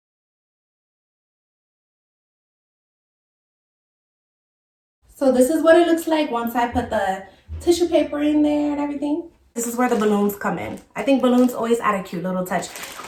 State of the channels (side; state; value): both; identical; correlation 1.00